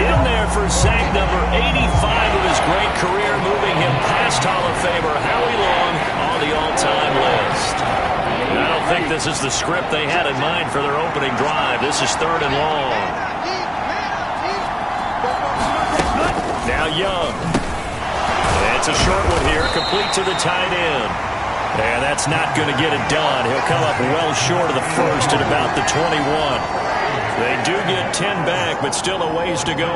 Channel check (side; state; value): both; identical; correlation 1.00